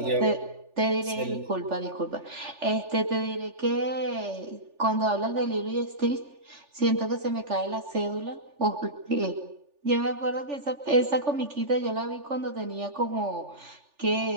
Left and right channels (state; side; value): late; left; 3.4 ms